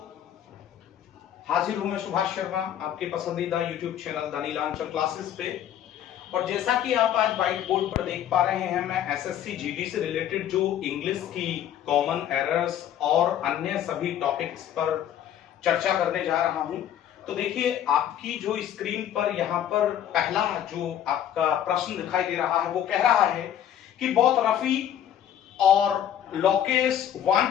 हाजिर हूं मैं सुभाष शर्मा आपके पसंदीदा YouTube channel the Neelanchal classes पे। और जैसा कि आप आज व्हाइट बोर्ड पर देख पा रहे हैं, मैं एसएससी जीडी से रिलेटेड जो इंग्लिश की कॉमन एरर्स और अन्य सभी टॉपिक्स पर चर्चा करने जा रहा हूं। तो देखिए, आपकी जो स्क्रीन पर यहाँ पर पहला जो आपका प्रश्न दिखाई दे रहा है वो कह रहा है कि बहुत रफी और Lokesh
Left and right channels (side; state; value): right; quieter; 10.4 dB